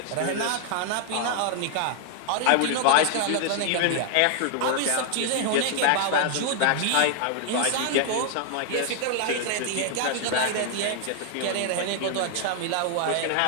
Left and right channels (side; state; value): both; different; correlation 0.00